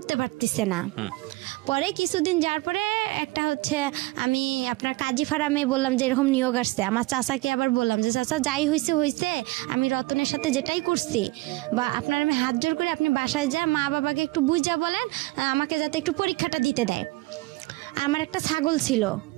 পারতেছে না। পরে কিছুদিন যাওয়ার পরে একটা আমি আপনার কাজী ফার্মে বললাম যে এরকম নিয়োগ আসছে, আমার চাচাকে আবার বললাম যে চাচা যাই হয়েছে, আমি রতনের সাথে যেটাই করছি, বা আপনার আমি হাত জোর করে আপনি বাসায় যা মা বাবাকে একটু বুঝা বলেন আমাকে যাতে একটু পরীক্ষাটা দিতে দেয়। আমার একটা ছাগল ছিল,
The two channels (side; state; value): left; quieter; 21.5 dB